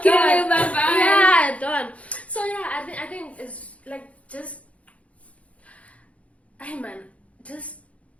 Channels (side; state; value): right; late; 0.065 ms